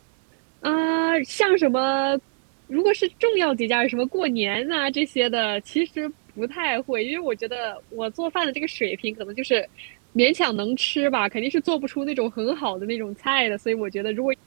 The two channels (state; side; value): silent; left; digital silence